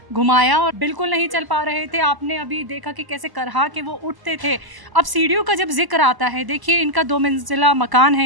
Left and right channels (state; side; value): late; left; 1.0 ms